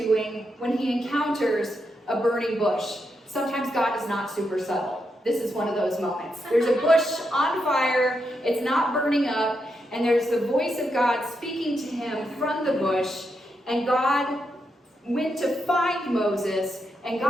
when he encounters a burning bush. Sometimes God is not super subtle. This is one of those moments. There's a bush on fire. It's not burning up. And there's the voice of God speaking to him from the bush. And God went to find Moses. And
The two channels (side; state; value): both; normal; correlation 0.83